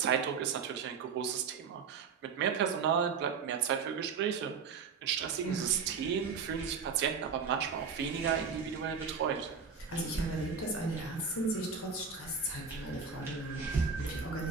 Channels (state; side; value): quieter; left; 5.7 dB